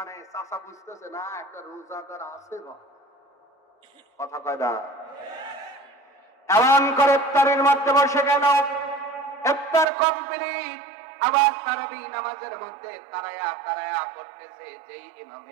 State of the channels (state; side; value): drops out; left; at 9.9 s